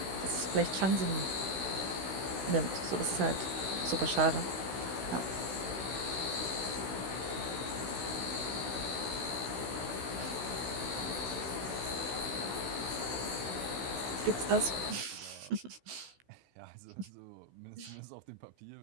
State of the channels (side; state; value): left; late; 16 ms